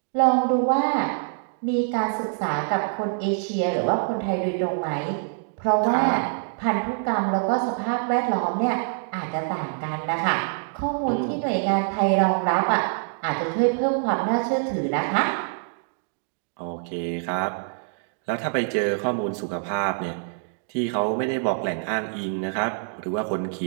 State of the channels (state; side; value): silent; left; digital silence